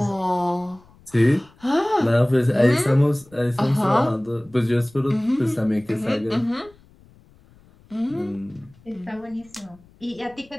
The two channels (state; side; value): noise; left; rumble, 28 dB below the sound